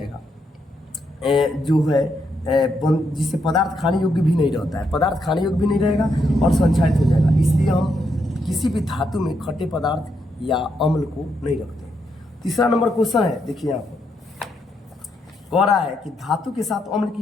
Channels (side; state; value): both; normal; correlation 0.79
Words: जो है जिससे पदार्थ खाने योग्य भी नहीं रहता है, पदार्थ खाने योग्य भी नहीं रहेगा और संक्षारित हो जाएगा। इसलिए हम किसी भी धातु में खट्टे पदार्थ या अम्ल को नहीं रखते। तीसरा नंबर क्वेश्चन है, देखिए यहाँ पर कह रहा है कि धातु के साथ अम्ल